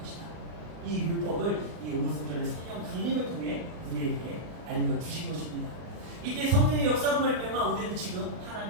이 율법을 이 오순절의 성령 강림을 통해 우리에게 알려주신 것입니다. 이때 성령의 역사로 말미암아 우리는 지금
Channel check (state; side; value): late; left; 40 ms